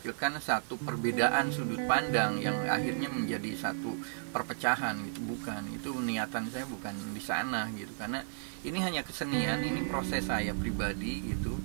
satu perbedaan sudut pandang yang akhirnya menjadi satu perpecahan gitu, bukan, itu niatan saya bukan di sana gitu, karena ini hanya kesenian, ini proses saya pribadi gitu.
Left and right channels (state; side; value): silent; left; digital silence